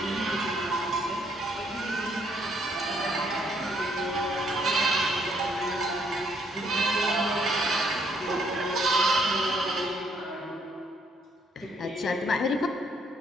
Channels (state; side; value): normal; both; correlation 0.69